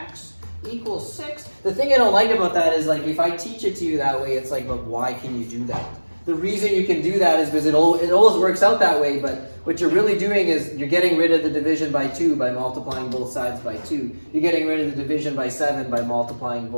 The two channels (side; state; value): both; inverted; correlation -1.00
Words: equals 6. The thing I don't like about that is like if I teach it to you that way, it's like, but why can you do that? The reason you can do that is because it always works out that way, but what you're really doing is you're getting rid of the division by 2 by multiplying both sides by 2. You're getting rid of the division by 7 by multiplying